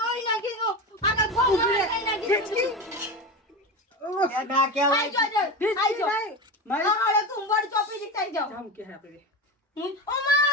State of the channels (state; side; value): normal; both; correlation 0.22